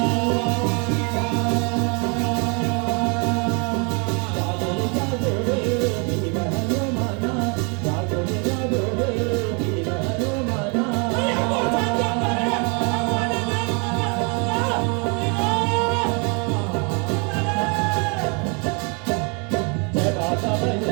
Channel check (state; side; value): quieter; left; 34.2 dB